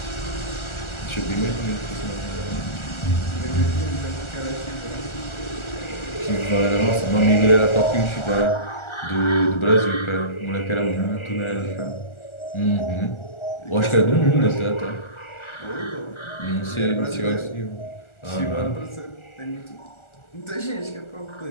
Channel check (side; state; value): right; late; 1.4 ms